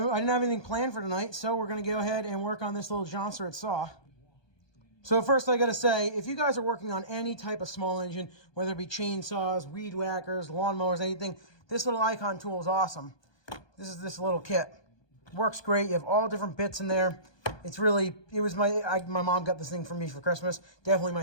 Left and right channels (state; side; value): late; right; 1.2 ms